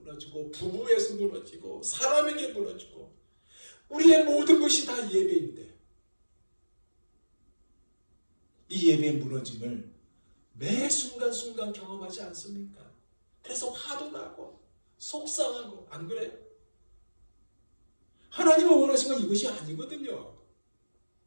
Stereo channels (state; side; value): inverted; both; correlation -1.00